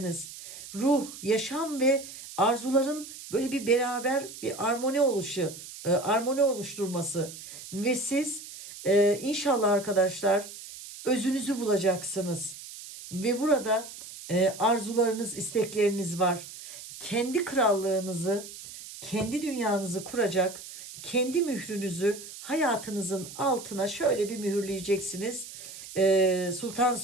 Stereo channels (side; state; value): right; noise; hiss, 13 dB below the sound